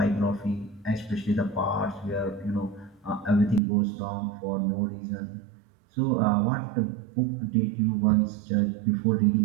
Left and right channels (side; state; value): left; drops out; at 3.6 s